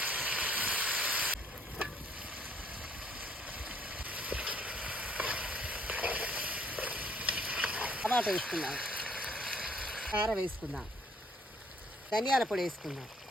టమాటా వేసుకుందాం. కారం వేసుకుందాం. ధనియాల పొడి వేసుకుందాం.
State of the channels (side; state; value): both; normal; correlation 0.64